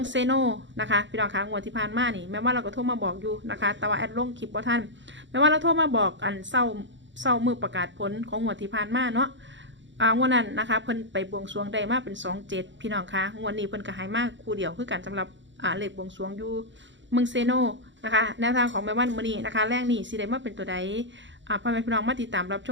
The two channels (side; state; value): left; late; 0.54 ms